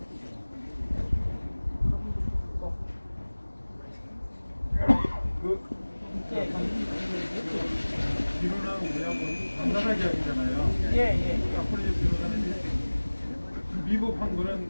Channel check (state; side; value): inverted; both; correlation -1.00